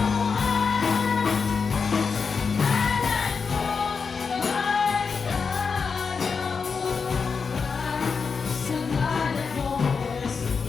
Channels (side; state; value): right; quieter; 5.4 dB